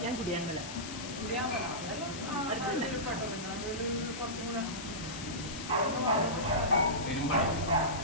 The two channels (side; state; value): left; noise; hiss, 9 dB below the sound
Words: ഞാൻ കുടിയാൻമല. അതെല്ലാം നടുവിൽ പെട്ടോ. പിന്നെ നടുവിൽ കുറച്ചും കൂടെ